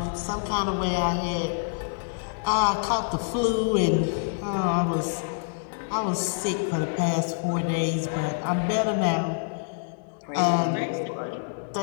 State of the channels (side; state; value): right; silent; digital silence